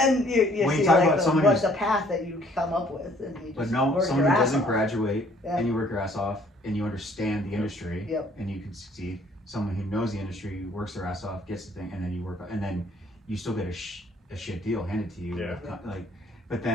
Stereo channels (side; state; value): both; normal; correlation 0.60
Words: you when see you talk like about someone what's the path that you come up with, and you just but no, work someone your who ass doesn't off. graduate Yeah. and you work your ass off and you understand the industry Yep. and you can succeed. Someone who knows the industry, works their ass off, gets the thing, and then you work, and then you still get a shit deal handed to you. Yeah. Like, but